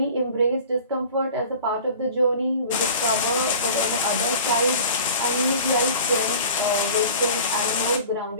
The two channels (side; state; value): both; inverted; correlation -0.42